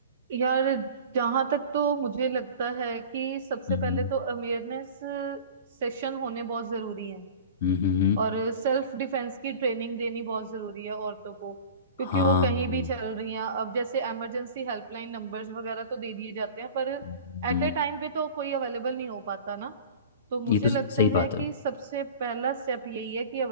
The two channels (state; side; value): inverted; both; correlation -0.38